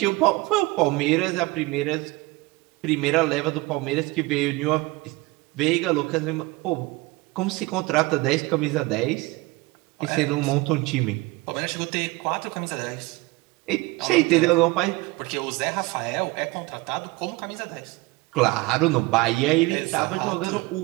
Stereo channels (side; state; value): left; quieter; 22.1 dB